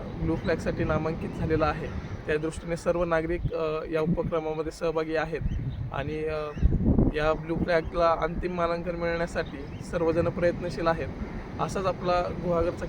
ब्लू फ्लॅगसाठी नामांकित झालेला आहे. त्या दृष्टीने सर्व नागरिक या उपक्रमामध्ये सहभागी आहेत आणि या ब्लू फ्लॅगला अंतिम मानांकन मिळण्यासाठी सर्वजण प्रयत्नशील आहेत. असाच आपला गुहागरचा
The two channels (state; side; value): identical; both; correlation 1.00